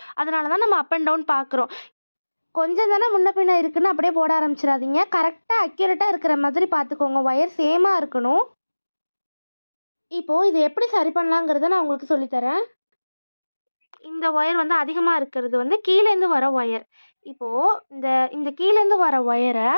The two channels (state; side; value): inverted; both; correlation -1.00